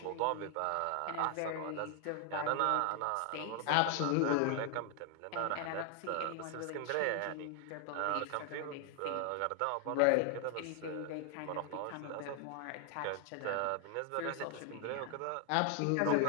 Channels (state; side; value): different; both; correlation 0.00